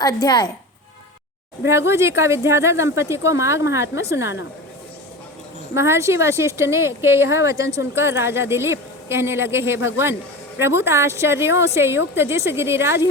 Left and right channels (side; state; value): both; normal; correlation 0.29